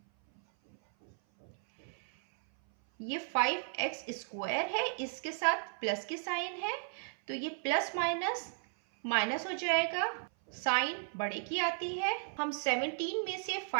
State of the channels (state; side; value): silent; left; 54 dB below the other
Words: ये 5x² है, इसके साथ प्लस के साइन है, तो ये प्लस माइनस माइनस हो जाएगा, साइन बड़े की आती है। हम 17 में से